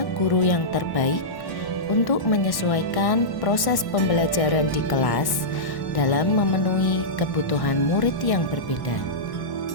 guru yang terbaik untuk menyesuaikan proses pembelajaran di kelas dalam memenuhi kebutuhan murid yang berbeda.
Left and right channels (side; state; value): right; late; 1.1 ms